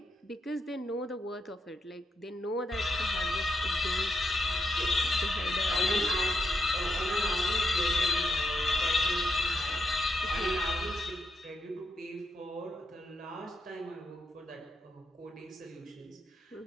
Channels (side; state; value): both; normal; correlation 0.81